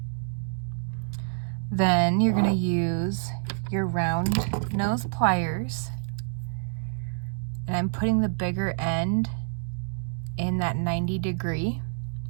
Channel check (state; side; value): silent; left; digital silence